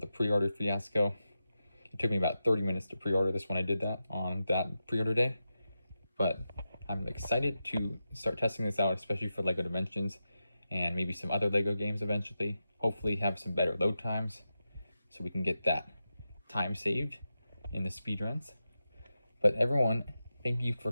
the pre-order fiasco. It took me about 30 minutes to pre-order this when I did that on that pre-order day. But I'm excited to start testing this out, especially for LEGO Dimensions and maybe some other LEGO games eventually. Hopefully have some better load times so we can get that time saved in the speedruns. But everyone, thank you for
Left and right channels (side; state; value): both; inverted; correlation -0.90